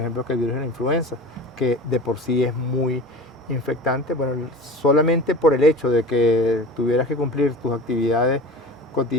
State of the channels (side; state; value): both; normal; correlation 0.35